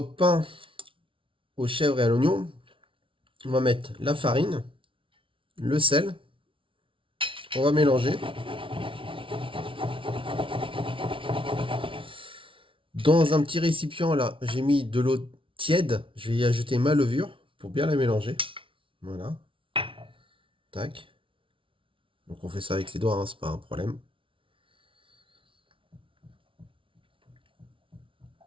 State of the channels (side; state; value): left; late; 0.25 ms